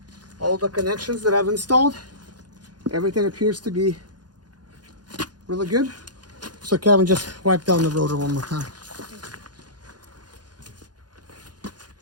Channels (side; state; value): left; late; 0.69 ms